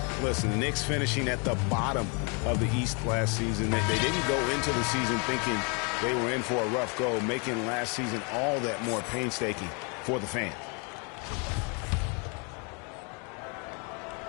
Listen, the Knicks finishing at the bottom of the East last season. They didn't go into the season thinking they were in for a rough go, making last season all that more painstaking for the fans.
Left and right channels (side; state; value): right; quieter; 34.6 dB